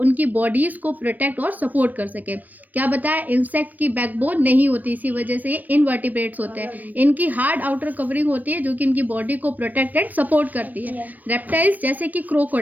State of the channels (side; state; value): left; late; 0.084 ms